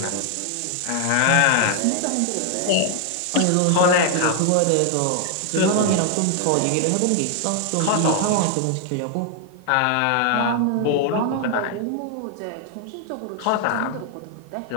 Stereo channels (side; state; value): both; different; correlation 0.00